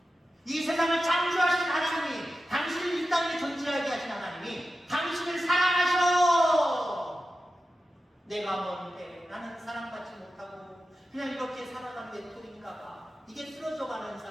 이 세상을 창조하신 하나님이, 당신을 이 땅에 존재하게 하신 하나님이 당신을 사랑하셔. 내가 뭔데, 나는 사랑받지 못하고 그냥 이렇게 살아가는 외톨이인가 봐. 이게 쓰러져가는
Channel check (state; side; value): normal; both; correlation 0.92